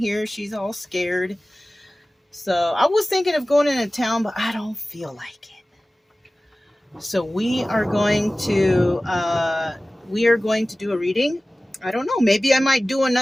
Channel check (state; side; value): normal; both; correlation 0.97